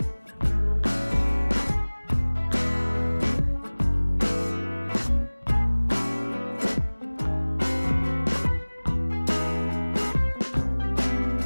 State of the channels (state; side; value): inverted; both; correlation -1.00